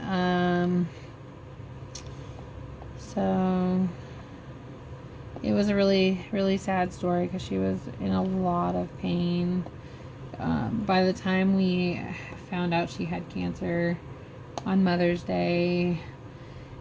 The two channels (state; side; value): identical; both; correlation 1.00